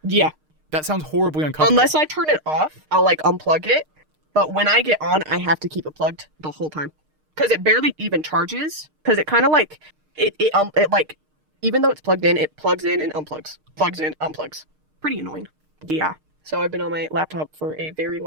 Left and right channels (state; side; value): late; left; 6.5 ms